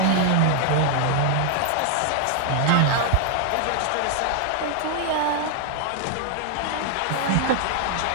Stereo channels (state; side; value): different; both; correlation 0.00